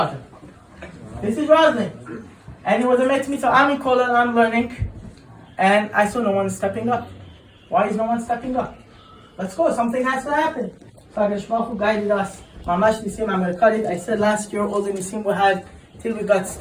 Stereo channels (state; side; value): identical; both; correlation 1.00